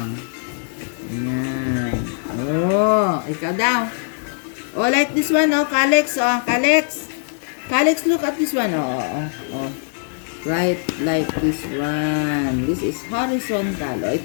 Ayan. O, ikaw daw. O, like this one, o. Kalex, o. Kalex. Kalex, look at this one. O. Right, like this one. This is horizontal. O,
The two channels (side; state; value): right; silent; 65 dB below the other